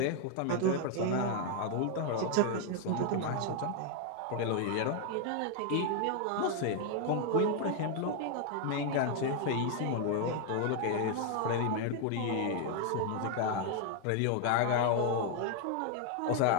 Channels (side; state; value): both; different; correlation 0.00